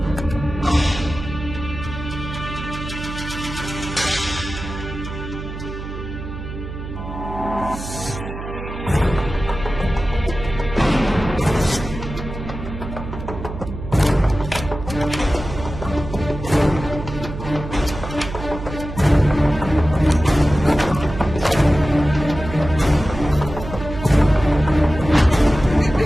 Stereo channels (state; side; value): noise; right; hum, 9 dB below the sound